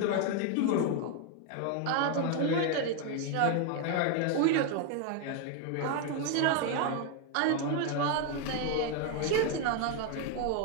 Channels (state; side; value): different; both; correlation 0.01